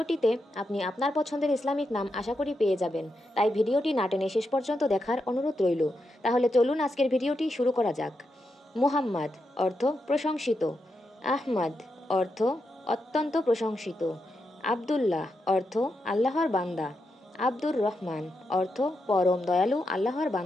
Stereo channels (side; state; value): both; normal; correlation 0.85